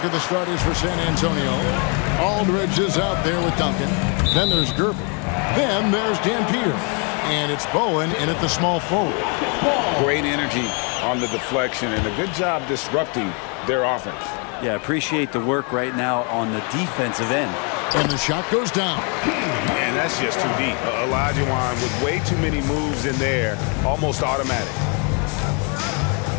at the starters for San Antonio. Aldridge is out there with Duncan. Then there's Gervin. Then there's Dan Peter. And it's Bowen in at the small forward. Great energy on the deflection and a good job disrupting their offense. Yeah, appreciate the work right now on the defensive end. And the shot goes down. And that's just too deep. Olajuwon with way too many moves in there, almost automatic.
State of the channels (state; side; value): quieter; right; 36.3 dB